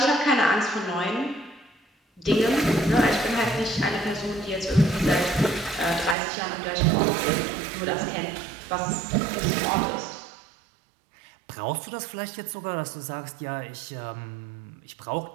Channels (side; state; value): left; drops out; at 6.2 s